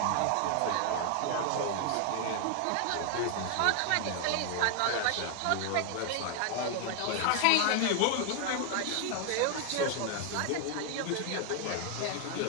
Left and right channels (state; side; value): different; both; correlation 0.00